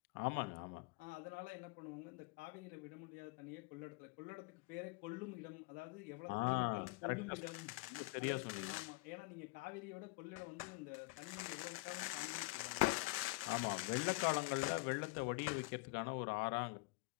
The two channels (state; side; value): quieter; right; 23.6 dB